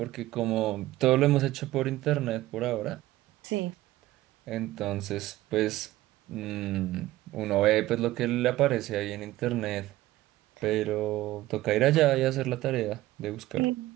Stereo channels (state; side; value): quieter; left; 16.3 dB